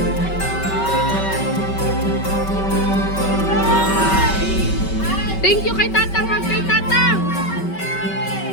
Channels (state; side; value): late; right; 5.2 ms